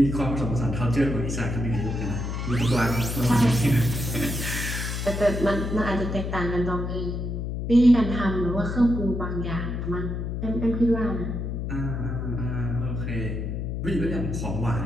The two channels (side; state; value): left; noise; hum, 3 dB below the sound